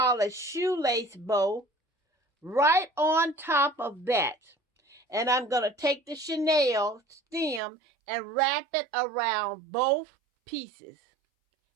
a shoelace bow right on top of that. And I'm going to take the Chanel stem and wrap it around both pieces.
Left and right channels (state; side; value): drops out; left; at 7.6 s